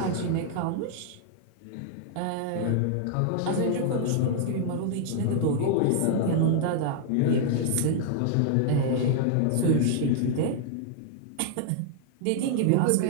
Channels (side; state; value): both; different; correlation 0.00